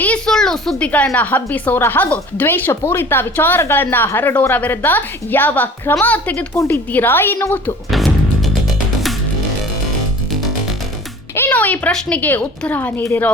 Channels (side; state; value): both; normal; correlation 0.45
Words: ಸುಳ್ಳು ಸುದ್ದಿಗಳನ್ನ ಹಬ್ಬಿಸೋರ ಹಾಗೂ ದ್ವೇಷ ಪೂರಿತ ವಿಚಾರಗಳನ್ನ ಹರಡೋರ ವಿರುದ್ಧ ಯಾವ ಕ್ರಮ ತೆಗೆದುಕೊಂಡಿದ್ದೀರಾ ಎನ್ನುವುದು. ಇನ್ನು ಈ ಪ್ರಶ್ನೆಗೆ ಉತ್ತರ ನೀಡಿರೋ